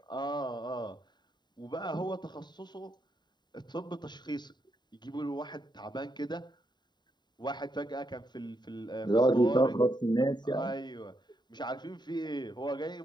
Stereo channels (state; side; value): late; right; 0.21 ms